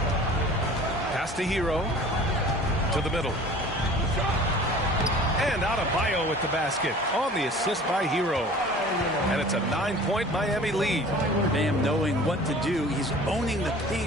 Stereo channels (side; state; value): both; normal; correlation 0.45